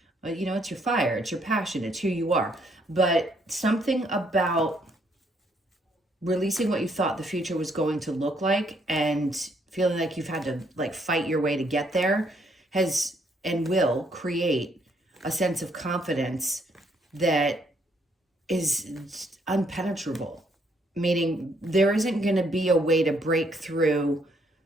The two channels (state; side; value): normal; both; correlation 0.70